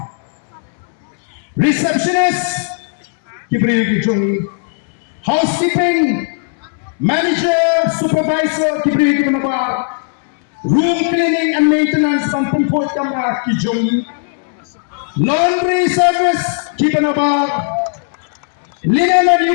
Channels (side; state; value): right; silent; 69 dB below the other